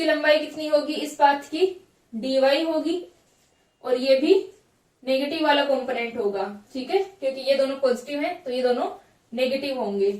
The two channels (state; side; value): identical; both; correlation 1.00